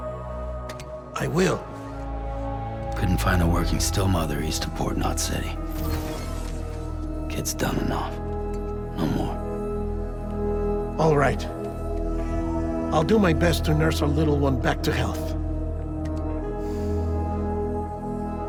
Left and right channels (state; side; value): identical; both; correlation 1.00